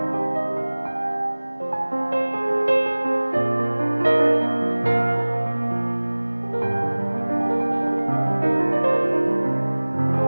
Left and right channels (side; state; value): both; inverted; correlation -1.00